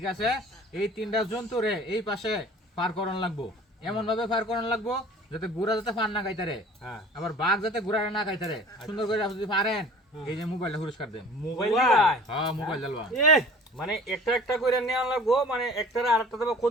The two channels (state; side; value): normal; both; correlation 0.46